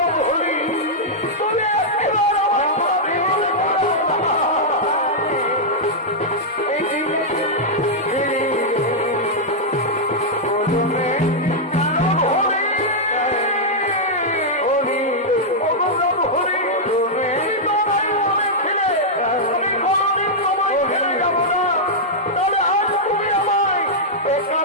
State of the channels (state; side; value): normal; both; correlation -0.06